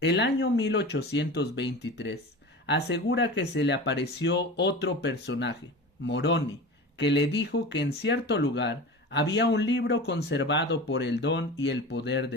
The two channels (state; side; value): normal; both; correlation 0.32